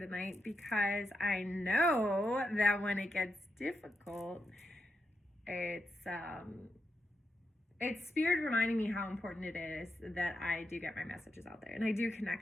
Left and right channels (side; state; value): both; normal; correlation 0.85